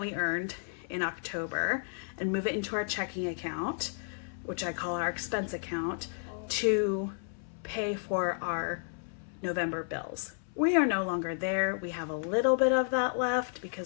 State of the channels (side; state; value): right; silent; 55 dB below the other